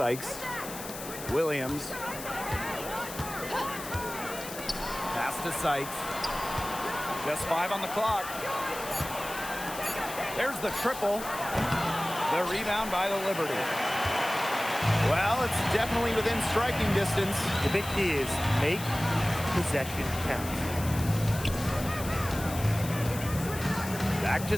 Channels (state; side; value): noise; left; hiss, 11 dB below the sound